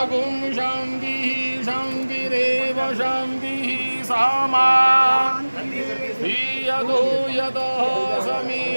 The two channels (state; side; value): inverted; both; correlation -1.00